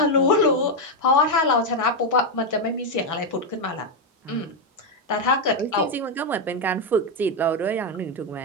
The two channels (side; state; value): both; normal; correlation 0.04